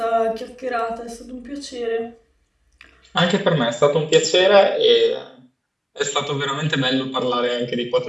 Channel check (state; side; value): identical; both; correlation 1.00